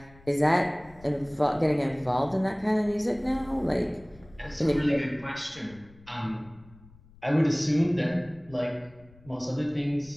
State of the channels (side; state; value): left; noise; rumble, 24 dB below the sound